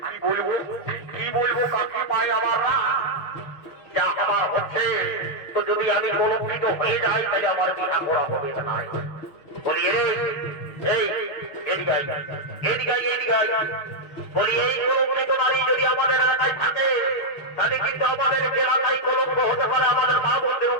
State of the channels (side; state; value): right; late; 6.4 ms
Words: কি বলবো কাকি পাই আমার যা আমার হচ্ছে। তো যদি আমি কলঙ্কিত হয়ে যাই তাহলে আমার বিনা করা হবে না। বলি রে এই এদিকাই এদিকাই এদিকাই, বলি এই কলঙ্কিত নারী যদি আমাদের এলাকায় থাকে তাহলে কিন্তু আমাদের এলাকায় কলঙ্ক হতে পারে আমাদের মা বোনদের